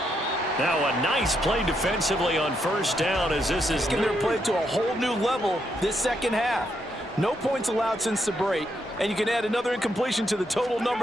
Now a nice play defensively on 1st down as this is Taking their play to a whole new level this second half. No points allowed since the break, and you can add another incompletion to the total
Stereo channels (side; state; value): both; normal; correlation 0.79